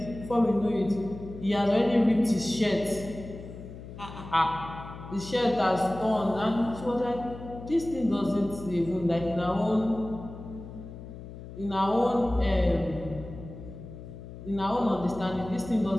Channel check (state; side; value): noise; left; hum, 13 dB below the sound